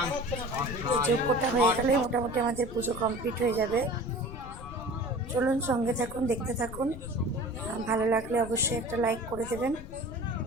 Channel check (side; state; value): left; noise; rumble, 12 dB below the sound